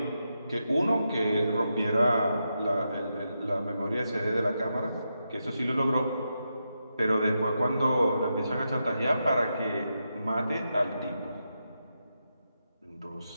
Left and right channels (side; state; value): both; inverted; correlation -0.86